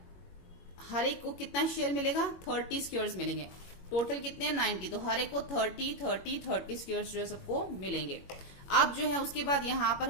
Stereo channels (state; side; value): late; right; 22 ms